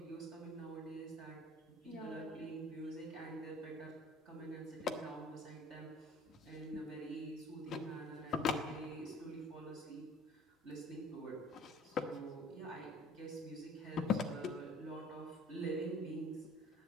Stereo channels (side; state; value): both; normal; correlation 0.51